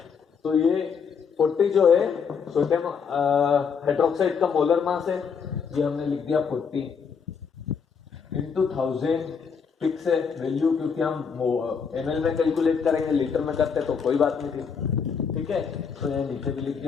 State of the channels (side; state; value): right; quieter; 6.2 dB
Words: तो ये 40 जो है सोडियम हाइड्रोक्साइड का मोलर मास है, ये हमने लिख दिया 40 इंटू 1000, फिक्स है वैल्यू, क्योंकि हम ml में कैलकुलेट करेंगे, लीटर में करते तो कोई बात नहीं थी, ठीक है। तो यहाँ नीचे भी लिख